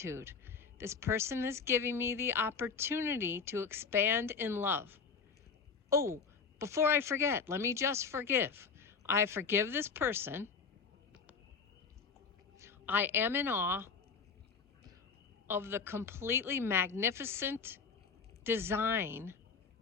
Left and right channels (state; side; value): quieter; right; 5.5 dB